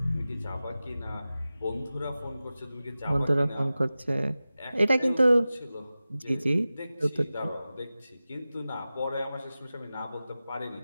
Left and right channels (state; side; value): inverted; both; correlation -0.95